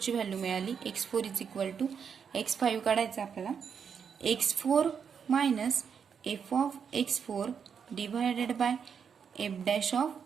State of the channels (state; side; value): quieter; left; 6.9 dB